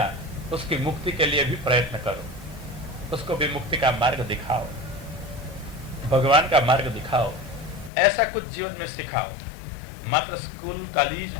उसकी मुक्ति के लिए भी प्रयत्न करो, उसको भी मुक्ति का मार्ग दिखाओ, भगवान का मार्ग दिखाओ, ऐसा कुछ जीवन में सिखाओ। मात्र स्कूल कॉलेज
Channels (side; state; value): right; drops out; at 7.9 s